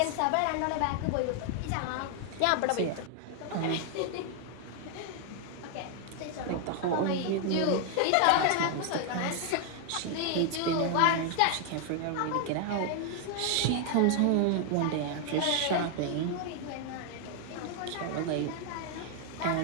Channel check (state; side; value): different; both; correlation 0.00